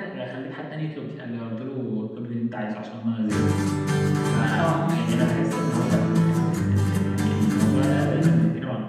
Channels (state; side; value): identical; both; correlation 1.00